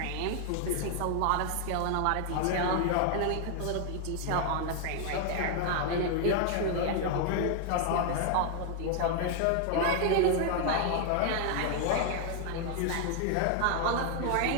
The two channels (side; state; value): both; different; correlation 0.00